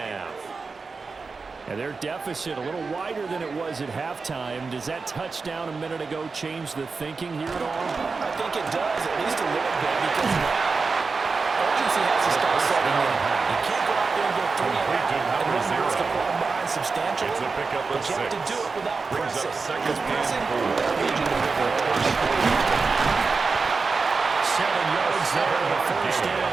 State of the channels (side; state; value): left; quieter; 4.4 dB